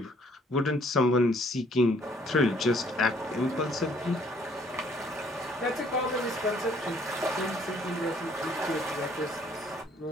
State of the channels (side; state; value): both; normal; correlation 0.62